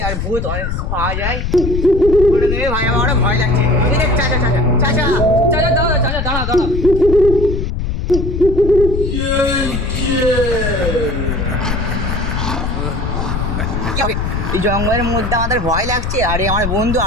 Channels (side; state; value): left; noise; rumble, 3 dB below the sound